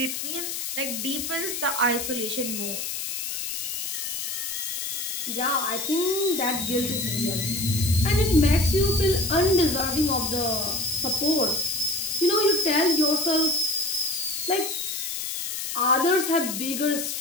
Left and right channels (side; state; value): left; noise; hiss, 4 dB below the sound